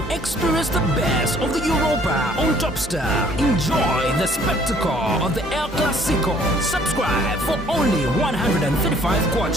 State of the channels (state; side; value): normal; both; correlation 0.59